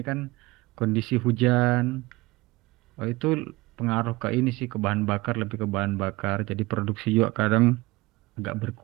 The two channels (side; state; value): left; quieter; 21.2 dB